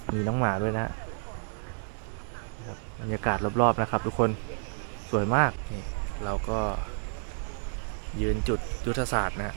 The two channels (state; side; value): silent; left; digital silence